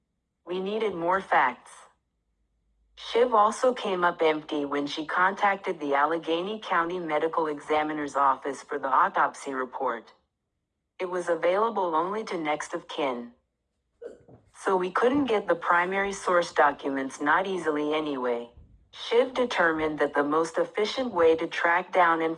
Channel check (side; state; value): both; identical; correlation 1.00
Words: We needed more facts. Shiv also came up empty when she contacted the Allegheny County Medical Examiner's Office for the autopsy report. It was available only to next of kin. So we couldn't get the primary source documents, not easily anyway. Shiv determined that the most efficient way to track down